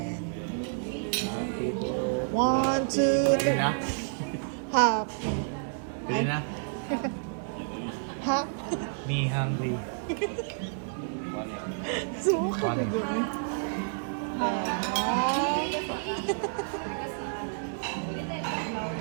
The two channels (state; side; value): silent; left; 58 dB below the other